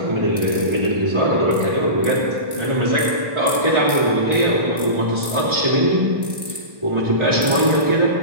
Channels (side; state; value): left; late; 1.1 ms